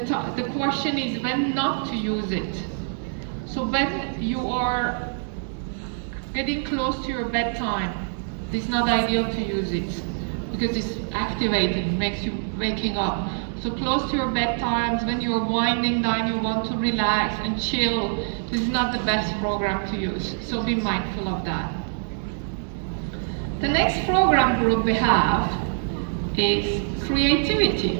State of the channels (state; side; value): silent; left; digital silence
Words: question is when not to use it. So when you are getting close to your bedtime, it's not ideal to use it because it's activating, makes you waking up. So close to your bedtimes, when you're winding down, you want to relax and chill, this is not the best program to use. So be mindful of that. The next program group we have is